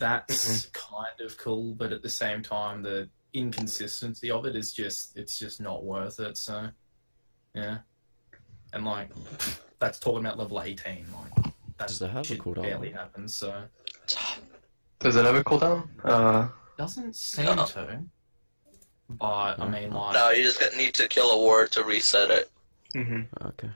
kind of cool, but at the same time, the inconsistency of it is just, it's just not worth it, so, yeah. And, like, that's talking about level 18, like, that Does it have a shit cooldown? barely happens, so. Does it have a cooldown? Doesn't seem No. to. But, I mean, like... No, you just need to kill a ward to reset it. Mm-hmm. Okay.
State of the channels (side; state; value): both; inverted; correlation -1.00